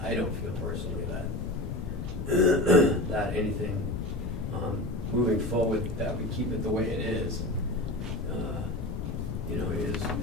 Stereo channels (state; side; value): noise; left; rumble, 4 dB below the sound